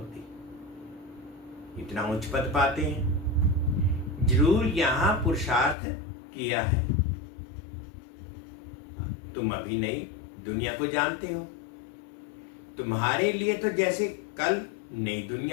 इतना उच्च पद पाते हैं, जरूर यहां पुरुषार्थ किया है। तुम अभी नई दुनिया को जानते हो। तुम्हारे लिए तो जैसे कल नई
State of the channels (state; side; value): drops out; right; at 5.8 s